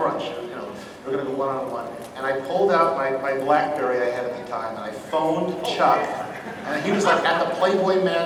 We're going to go one-on-one. And I pulled out my BlackBerry I had at the time, and I phoned Chuck. And he was like at the Playboy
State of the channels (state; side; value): identical; both; correlation 1.00